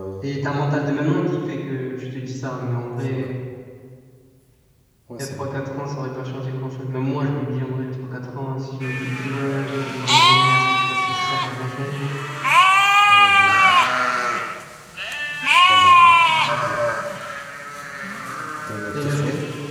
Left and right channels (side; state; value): both; identical; correlation 1.00